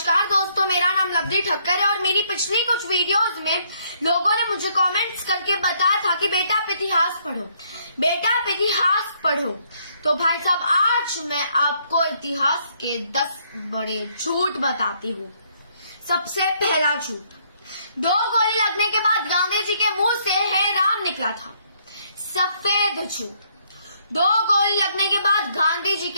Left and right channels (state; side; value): inverted; both; correlation -0.69